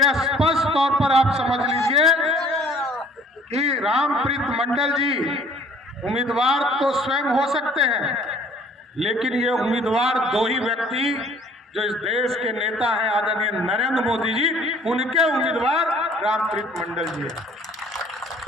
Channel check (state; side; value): normal; both; correlation 0.56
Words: स्पष्ट तौर पर आप समझ लीजिए कि रामप्रीत मंडल जी उम्मीदवार तो स्वयं हो सकते हैं, लेकिन ये उम्मीदवार दो ही व्यक्ति जो इस देश के नेता हैं आदरणीय नरेंद्र मोदी जी, उनके उम्मीदवार रामप्रीत मंडल जी हैं